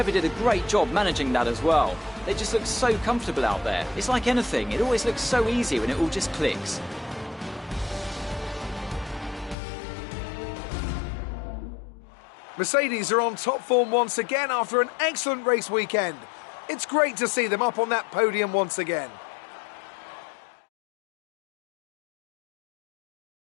did a great job managing that as well. They just look so comfortable out there. It's like anything, it always looks so easy when it all just clicks. Mercedes are on top form once again after an excellent race weekend. It's great to see them up on that podium once again.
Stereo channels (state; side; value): drops out; right; at 9.6 s